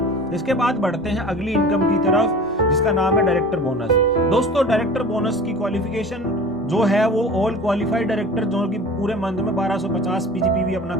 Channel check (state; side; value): normal; both; correlation 0.39